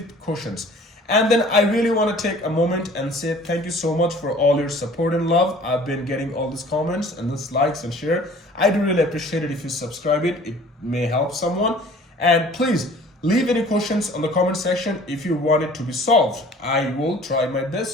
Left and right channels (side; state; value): both; normal; correlation 0.49